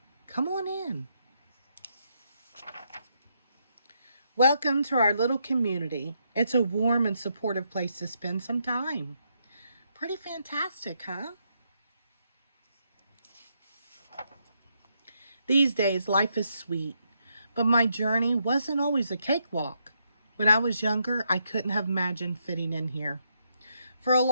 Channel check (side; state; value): both; inverted; correlation -0.78